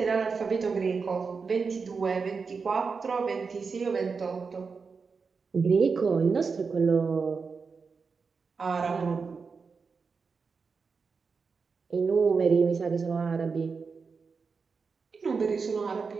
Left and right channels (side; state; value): left; quieter; 5.1 dB